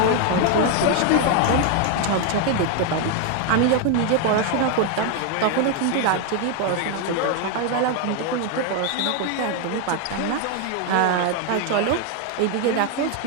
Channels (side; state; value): both; different; correlation 0.01